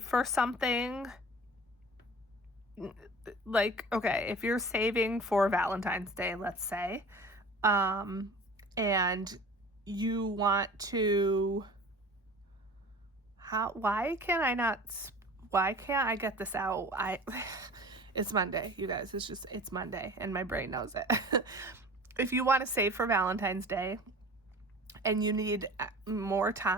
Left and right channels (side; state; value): both; normal; correlation 0.41